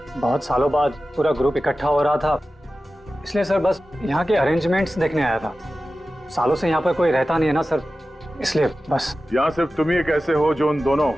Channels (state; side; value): normal; both; correlation 0.94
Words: बहुत सालों बाद पूरा ग्रुप इकट्ठा हो रहा था, इसलिए सर बस यहाँ के अरेंजमेंट्स देखने आया था। सालों से यहाँ पर कोई रहता नहीं है ना सर, इसलिए बस। यहाँ सिर्फ तुम ही एक ऐसे हो जो उन दोनों